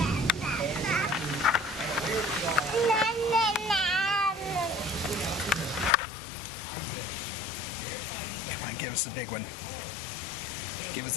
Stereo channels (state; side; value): drops out; right; at 6.0 s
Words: Give us a big one. Give